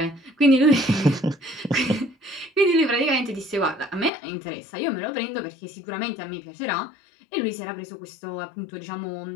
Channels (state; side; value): drops out; right; at 4.1 s